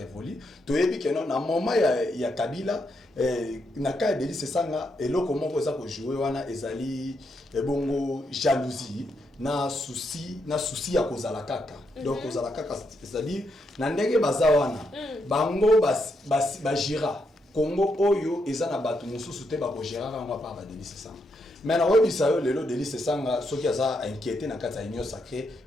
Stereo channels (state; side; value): normal; both; correlation 0.80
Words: to yebi ke non na moment ya Kabila na ka de lycée sanga eloko moko eza ko jouer wana ezali bongo jalousie na souci ya kozala kaka donc kozala kaka c'est-à-dire na ndenge baza wana bango bajira Congo oyo eza na bato mususu te bako gérer ngwa pa ba délice sanga mais na webisa yo lelo délice sanga soki aza inquiété na kati ya union sacrée